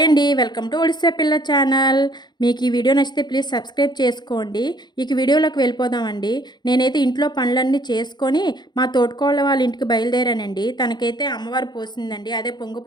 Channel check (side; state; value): right; late; 0.21 ms